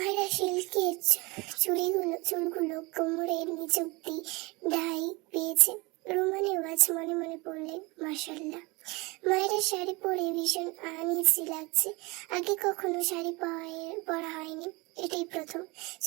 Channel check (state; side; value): quieter; left; 25.4 dB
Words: সিল্কের চুলগুলো কোমরের নিচ অব্দি ডাই পেয়েছে। রোমা নেওয়াজ মনে মনে পড়লেন, মাশাআল্লাহ। মায়েরা শাড়ি পরে ভীষণ আনইজি লাগছে। আগে কখনো শাড়ি পরা হয়নি, এটাই প্রথম।